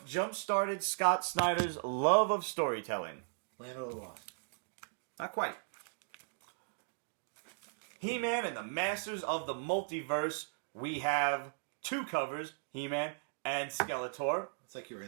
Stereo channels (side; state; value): left; silent; digital silence